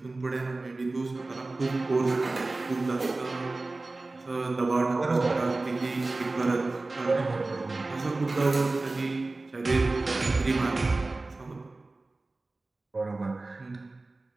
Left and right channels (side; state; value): left; quieter; 3.2 dB